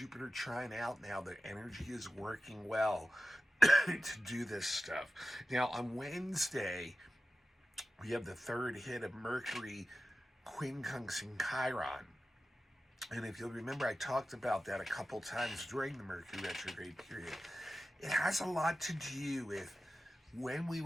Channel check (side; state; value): both; normal; correlation 0.93